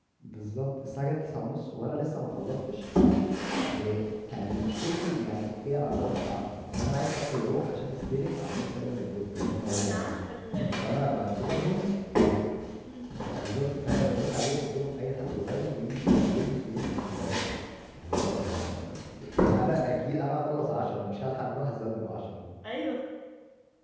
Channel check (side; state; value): both; identical; correlation 1.00